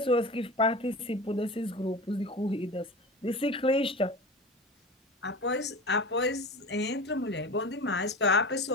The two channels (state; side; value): normal; both; correlation 0.31